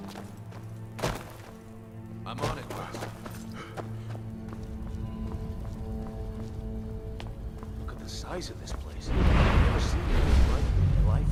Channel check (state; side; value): identical; both; correlation 1.00